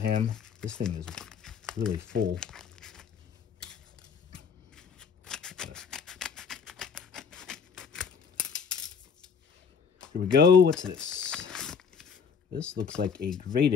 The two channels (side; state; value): right; quieter; 6.3 dB